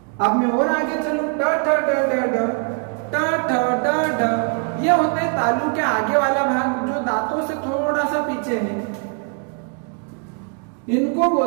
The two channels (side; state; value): left; quieter; 36.9 dB